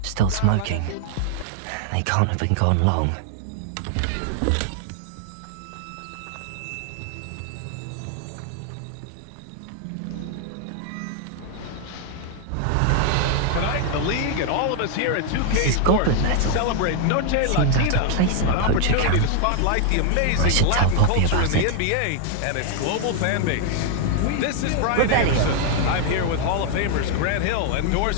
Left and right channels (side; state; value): both; different; correlation 0.00